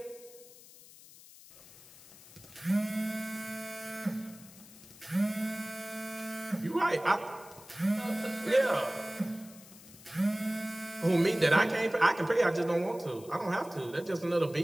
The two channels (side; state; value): left; noise; hiss, 20 dB below the sound